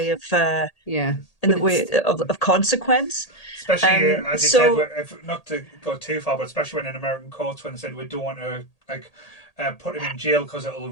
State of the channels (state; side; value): late; right; 1.8 ms